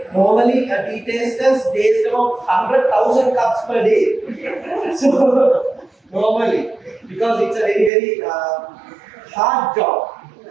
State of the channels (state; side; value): drops out; left; at 7.9 s